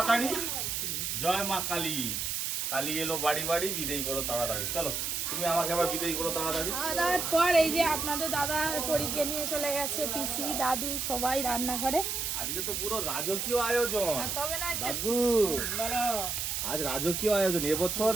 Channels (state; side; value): noise; right; hiss, 1 dB below the sound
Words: জয় মা কালী, কালী এলো বাড়ি বাড়ি বিদায় করো তাড়াতাড়ি। চলো তুমি আমাকে আবার বিদায় করো তাড়াতাড়ি। তারপর এই যে আপনাদের দাদা পরীকে নিয়ে চলে গেছে, পিসি দাদু সবাই রান্না করে। আজকে তো পুরো রাজকীয় আয়োজন তবে না দাদু। আজ রাজকীয় আয়োজন। এবছর